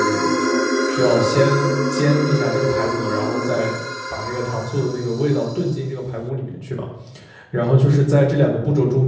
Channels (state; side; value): identical; both; correlation 1.00